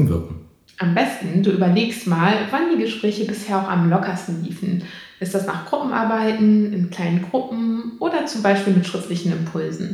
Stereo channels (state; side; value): identical; both; correlation 1.00